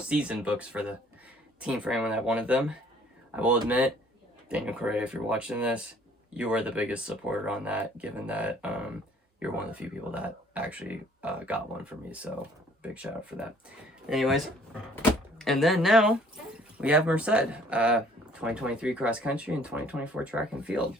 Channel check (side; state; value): both; normal; correlation 0.57